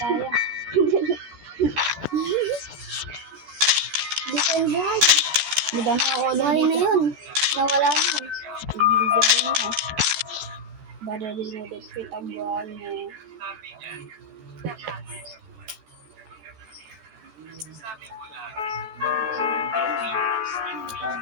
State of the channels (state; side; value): late; left; 14 ms